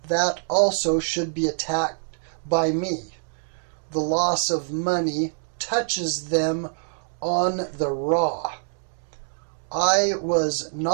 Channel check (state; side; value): silent; left; digital silence